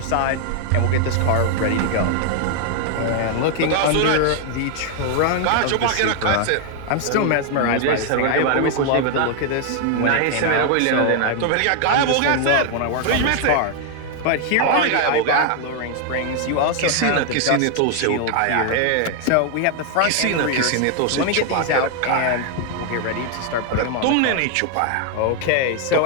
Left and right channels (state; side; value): different; both; correlation 0.00